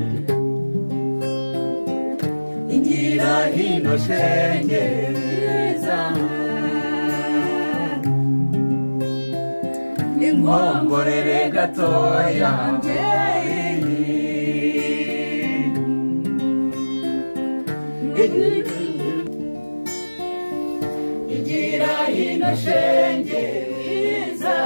hino shenge mwiza inkongorere gatoya igira hino shenge mwiza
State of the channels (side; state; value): both; inverted; correlation -1.00